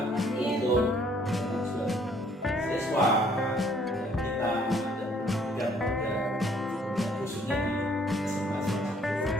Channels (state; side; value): normal; both; correlation 0.62